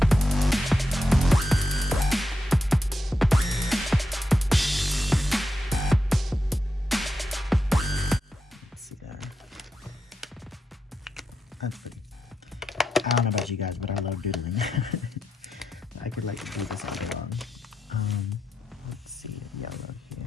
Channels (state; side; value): normal; both; correlation 0.86